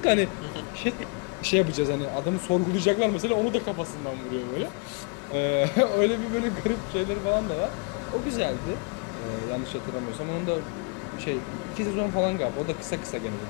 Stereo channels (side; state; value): right; quieter; 32.7 dB